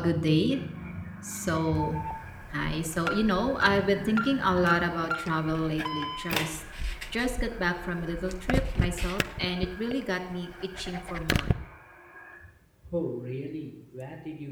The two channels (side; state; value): both; identical; correlation 1.00